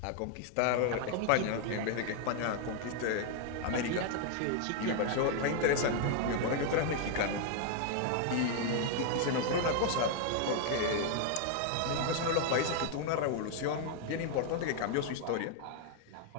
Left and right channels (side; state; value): both; different; correlation 0.00